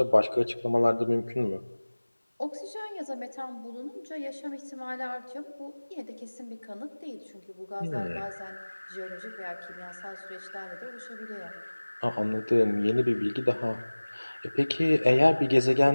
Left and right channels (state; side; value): inverted; both; correlation -1.00